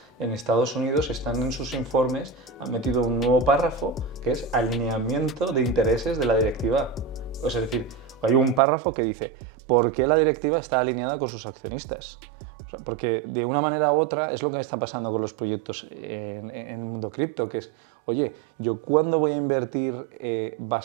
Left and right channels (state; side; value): drops out; left; at 8.6 s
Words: en Estados Unidos están en sus informes, han metido un nuevo párrafo que es alineamiento de intereses de la directiva. O sea, es decir, hay un párrafo que dice ¿por qué la directiva está alineada con sus accionistas? O sea, porque de una manera u otra es lo que está pasando con los proyectos en el mundo cripto, que es, oye, ¿yo cuándo voy a invertir?